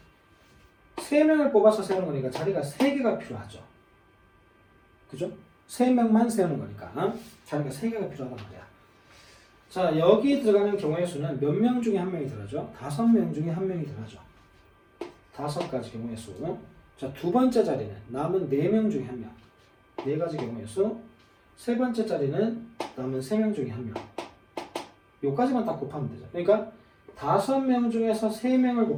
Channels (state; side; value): identical; both; correlation 1.00